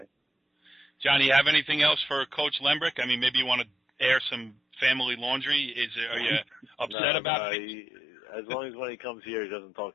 Johnny, you have anything else for Coach Lembrick? I mean, maybe you want to air some family laundry? Are you upset about it? As long as when he comes here, he doesn't talk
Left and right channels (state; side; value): drops out; right; at 7.0 s